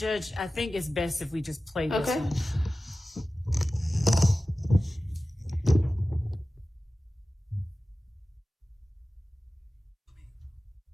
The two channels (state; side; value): normal; both; correlation 0.95